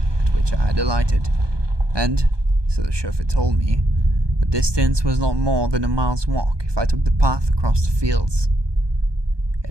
at which I had alighted, and, so the chauffeur told me, the distance was not more than a mile's walk if I took the path across the fields.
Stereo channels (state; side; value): late; left; 1.2 ms